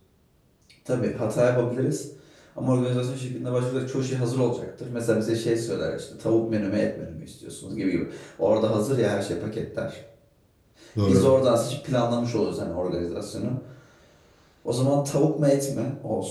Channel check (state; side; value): identical; both; correlation 1.00